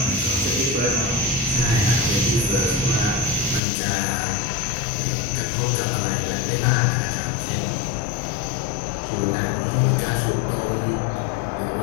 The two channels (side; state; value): right; drops out; at 3.6 s